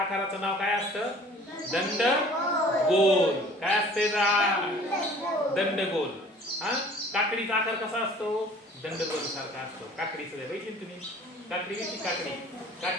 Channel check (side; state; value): both; normal; correlation 0.49